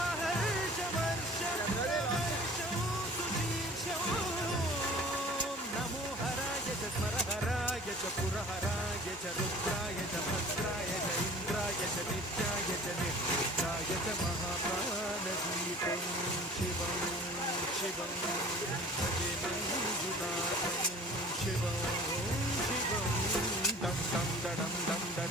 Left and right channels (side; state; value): both; normal; correlation 0.46